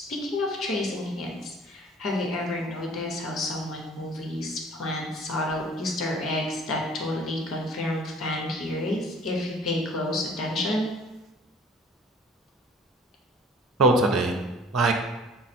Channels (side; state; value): both; normal; correlation 0.49